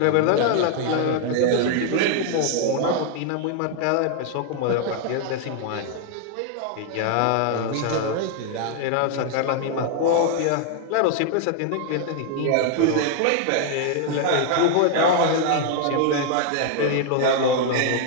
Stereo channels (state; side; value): different; both; correlation 0.00